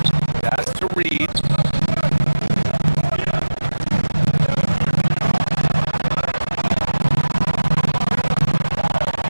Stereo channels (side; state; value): both; inverted; correlation -1.00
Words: That's to Reed.